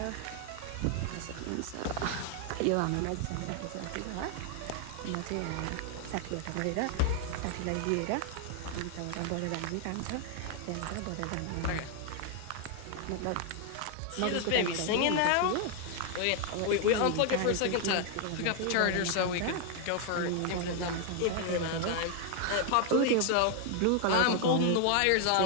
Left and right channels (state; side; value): different; both; correlation 0.00